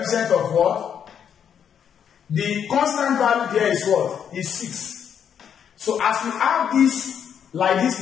of what? The constant value there is what? Is 6. So as we have this like this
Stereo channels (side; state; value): right; quieter; 8.3 dB